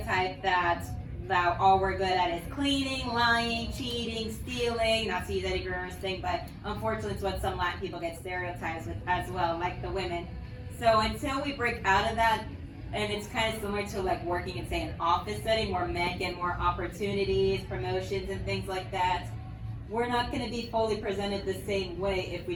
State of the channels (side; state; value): both; identical; correlation 1.00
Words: that all we're good at is cleaning, lying, cheating, stealing, not to use Eddie Guerrero's thing, but unfortunately it's what some Latin people get stereotyped with as well, like the women. So until we break out of that, and it's kind of similar to like working in, say, an office setting where men get more opportunities, promotions, and things like that, we're not going to be fully presented the same way if we